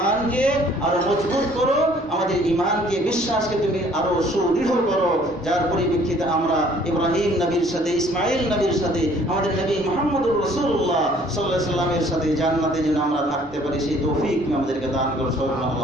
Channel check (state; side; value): normal; both; correlation 0.57